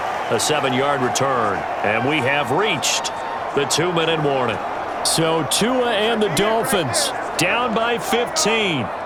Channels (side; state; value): both; identical; correlation 1.00